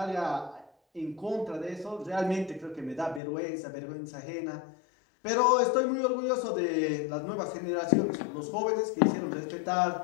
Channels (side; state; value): right; drops out; at 3.2 s